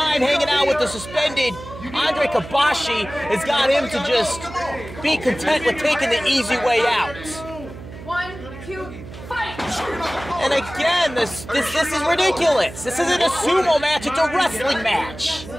hanging out with the suspended Andre Kabashi has got him to just be content with taking the easy way out. 1, And again, this is ridiculous. This isn't a sumo match, it's a wrestling match.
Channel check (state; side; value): noise; right; hum, 14 dB below the sound